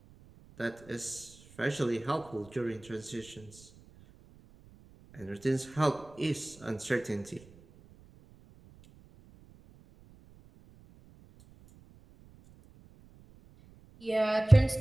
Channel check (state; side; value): noise; right; rumble, 24 dB below the sound